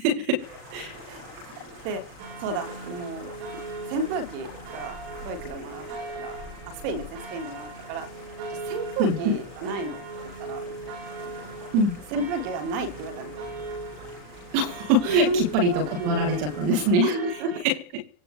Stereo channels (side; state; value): left; late; 40 ms